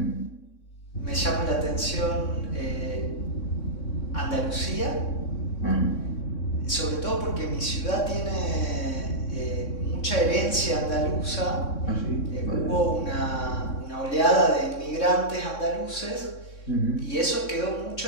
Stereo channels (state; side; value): late; right; 3.6 ms